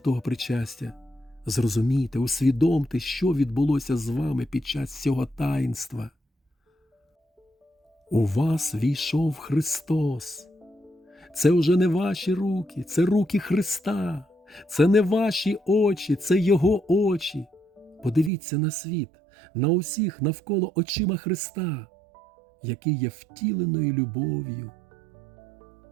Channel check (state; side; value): drops out; left; at 18.3 s